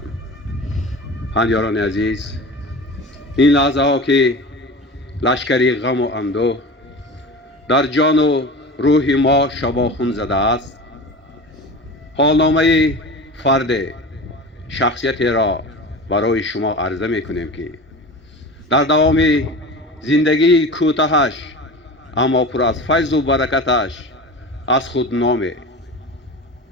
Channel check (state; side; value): normal; both; correlation 0.33